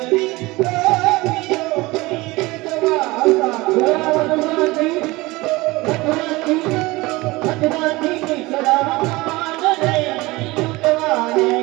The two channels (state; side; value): quieter; left; 21.6 dB